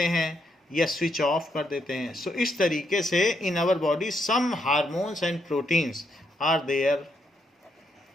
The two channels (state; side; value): normal; both; correlation 0.77